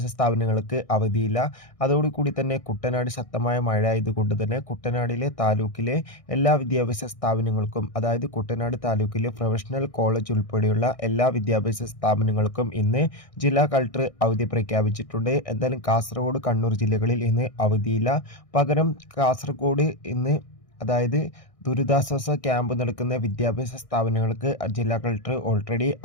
സ്ഥാപനങ്ങൾക്ക് അവധിയില്ല. അതോടുകൂടി തന്നെ കുട്ടനാട് ശക്തമായ മഴ ആയതുകൊണ്ട് തന്നെ കുട്ടനാടിലെ താലൂക്കിലെ എല്ലാ വിദ്യാഭ്യാസ സ്ഥാപനങ്ങൾക്കും, അതായത് കുട്ടനാട് താലൂക്കിലെ പ്രൊഫഷണൽ കോളേജ് ഉൾപ്പെടെയുള്ള എല്ലാ വിദ്യാഭ്യാസ സ്ഥാപനങ്ങൾക്കും ഇന്ന് ജില്ലാ കളക്ടർ അവധി പ്രഖ്യാപിച്ചിട്ടുണ്ട്. എന്തായാലും കാസർഗോഡ്, കണ്ണൂർ ജില്ലകളിൽ ഇന്ന് അവധിയില്ല. പകരം കാസർഗോഡ് ഇന്ന്, അതായത് ദുരിതാശ്വാസ ക്യാമ്പ് നടക്കുന്ന വിദ്യാഭ്യാസ സ്ഥാപനങ്ങൾക്ക് ജില്ലാ കളക്ടർ ഓൾറെഡി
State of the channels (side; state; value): right; late; 1.6 ms